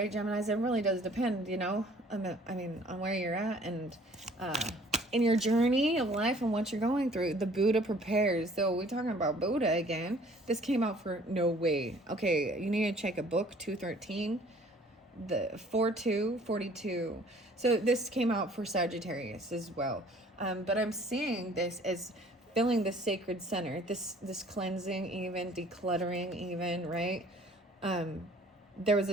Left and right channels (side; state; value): both; normal; correlation 0.55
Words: Geminis? It really does depend, you know, I mean, on where you're at and in your journey of life and what you're going through. The Buddha prepares. So we're talking about Buddha again. This came out for no way. Okay, you need to check a book, 213, the 4242. So this came out for Sagittarius as well. But I'm seeing this as filling the sacred center, this cleansing, even decluttering, even, right? There was